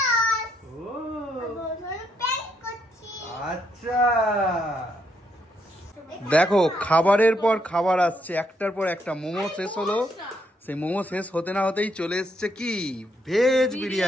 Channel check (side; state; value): both; normal; correlation 0.75